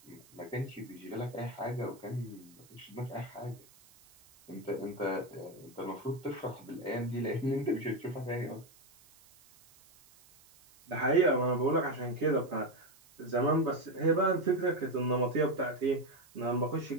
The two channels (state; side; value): noise; right; hiss, 26 dB below the sound